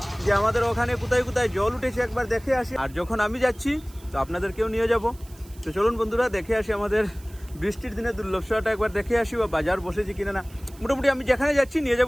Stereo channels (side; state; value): right; noise; hiss, 24 dB below the sound